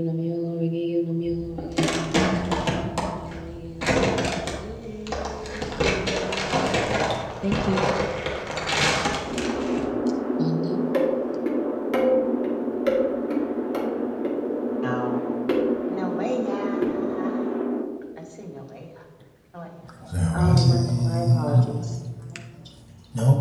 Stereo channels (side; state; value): both; identical; correlation 1.00